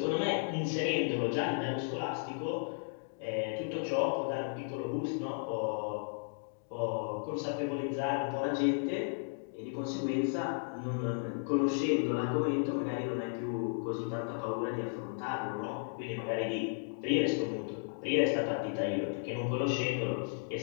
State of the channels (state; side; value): silent; right; digital silence